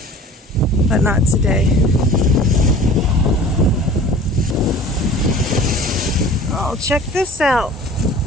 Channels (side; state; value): both; normal; correlation 0.43